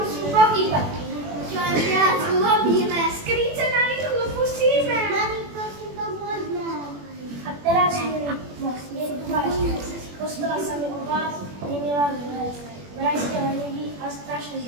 pochýbať. Čo je viac urobíme, skryce na rýchlo pustíme. Mami, prosím, pomôžme. A teraz mi most, nie tu váš kres. Postala sa mi o vás, nemila zles. Vraj ste leniví a strašne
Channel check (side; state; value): left; late; 21 ms